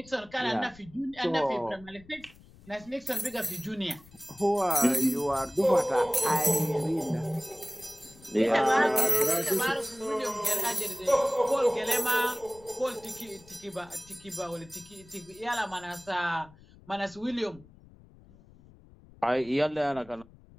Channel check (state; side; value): noise; left; rumble, 24 dB below the sound